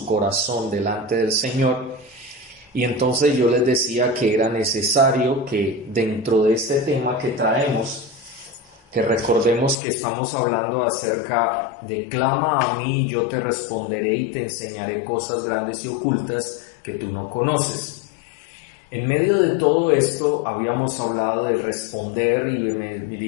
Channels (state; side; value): drops out; right; at 9.8 s